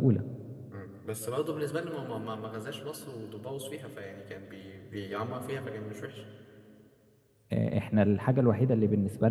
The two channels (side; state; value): both; identical; correlation 1.00